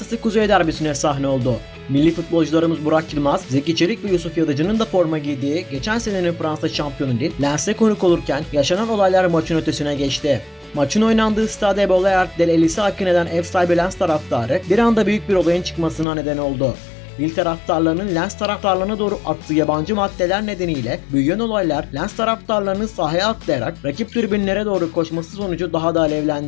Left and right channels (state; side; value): drops out; right; at 16.1 s